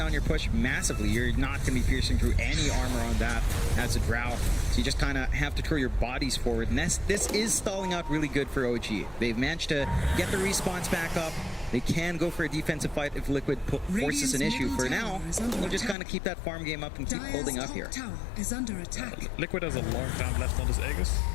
your push massively. You're not going to be piercing through any armor on that as a drow. So you just kind of have to throw your bodies forward. And this is stalling out really good for OG. They've managed to get the respawns back up. They can go for a defensive fight if Liquid forces an issue. For now, we'll just kind of keep that farm game up and keep holding up here. Liquid has a long time left on his Aegis.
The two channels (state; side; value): drops out; right; at 16.0 s